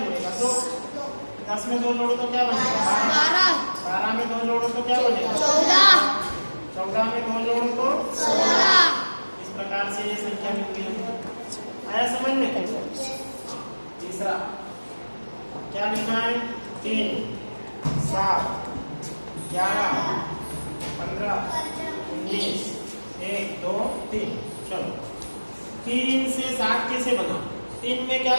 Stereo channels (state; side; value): inverted; both; correlation -1.00